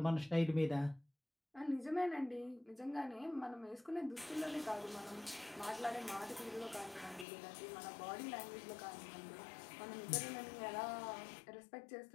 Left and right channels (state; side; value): drops out; right; at 7.2 s